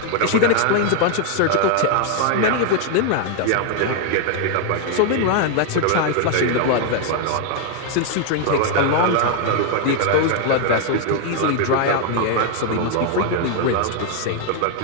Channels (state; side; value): different; both; correlation 0.00